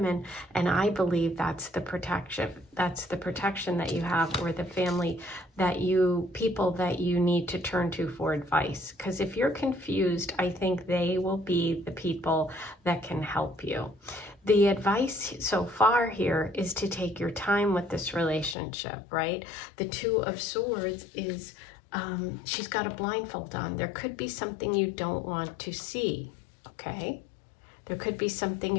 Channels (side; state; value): right; drops out; at 18.6 s